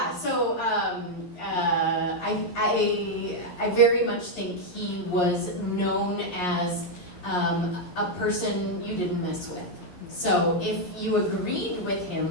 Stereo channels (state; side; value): late; right; 11 ms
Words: I very much think he was known as a person you didn't mess with. So if you agreed with